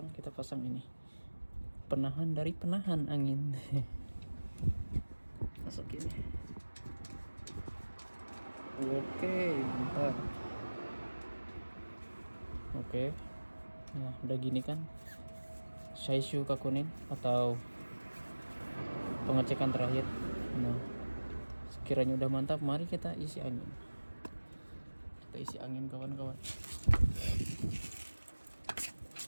kita pasang ini penahan dari penahan angin. Masukin. Oke, bentar. Oke. Nah, udah gini kan Shaishu Kakunin atau pengecekan terakhir. Nah, sekiranya udah mantap, mari kita isi angin. Kita isi angin kawan-kawan.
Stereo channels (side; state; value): both; inverted; correlation -1.00